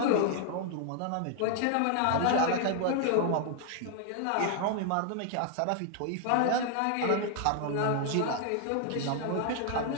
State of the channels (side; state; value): both; different; correlation 0.00